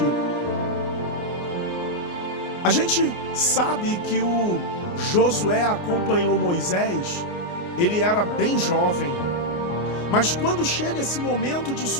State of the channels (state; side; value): late; right; 29 ms